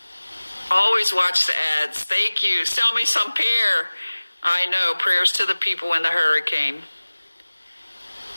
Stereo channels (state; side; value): inverted; both; correlation -1.00